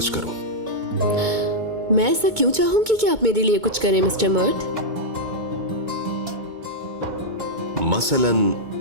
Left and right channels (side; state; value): left; late; 2.2 ms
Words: करूं। मैं ऐसा क्यों चाहूंगी कि आप मेरे लिए कुछ करें मिस्टर मर्ट? मसलन